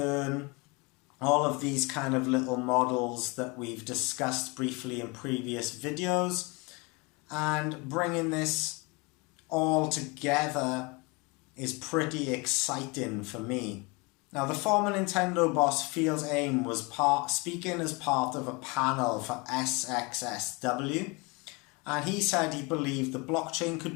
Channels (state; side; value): quieter; right; 27.9 dB